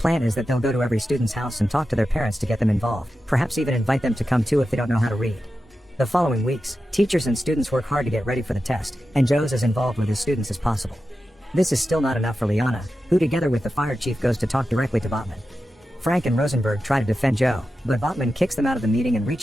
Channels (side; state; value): both; normal; correlation 0.91